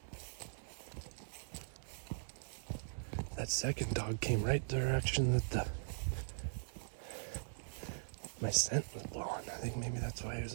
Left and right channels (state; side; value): silent; left; 51 dB below the other